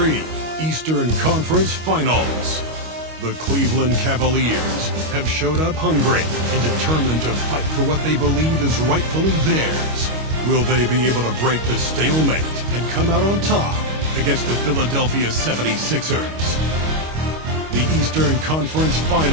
Eastern Conference Finals. The Cleveland Cavaliers have showed up hungry and determined to fight for what they believe is rightfully theirs. Will they be able to break the stalemate and come out on top against the Philadelphia 76ers? The Eastern Conference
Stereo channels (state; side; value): late; left; 25 ms